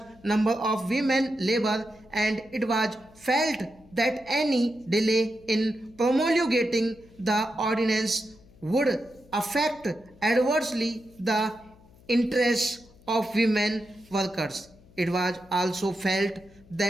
number of women labor, and it was felt that any delay in promulgating the ordinance would affect adversely the interests of women workers. It was also felt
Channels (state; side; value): noise; left; hum, 26 dB below the sound